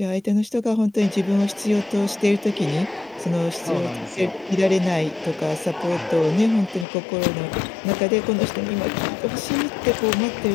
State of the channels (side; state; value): right; drops out; at 6.9 s